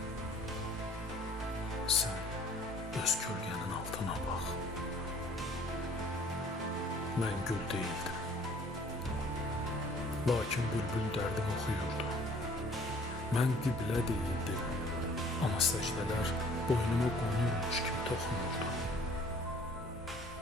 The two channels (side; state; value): both; normal; correlation 0.55